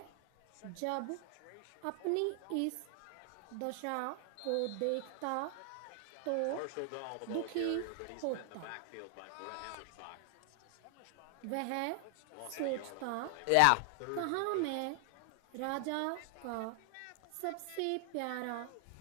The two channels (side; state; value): both; different; correlation 0.00